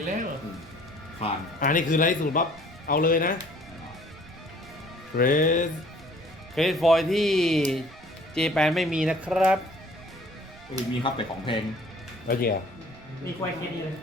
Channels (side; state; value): right; noise; rumble, 21 dB below the sound